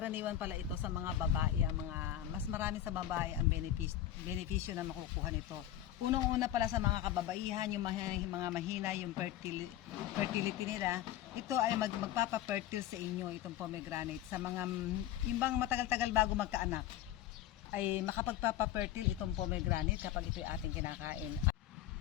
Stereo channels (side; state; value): right; quieter; 12.3 dB